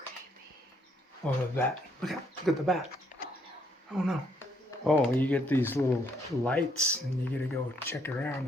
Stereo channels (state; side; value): normal; both; correlation 0.71